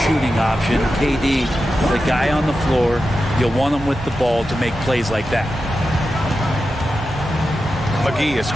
shooting option. KD, the guy on the floor, you'll want him with the ball to make plays like that. McGee, a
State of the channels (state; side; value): normal; both; correlation 0.91